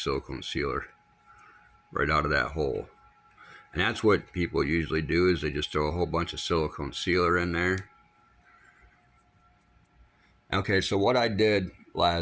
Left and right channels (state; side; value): identical; both; correlation 1.00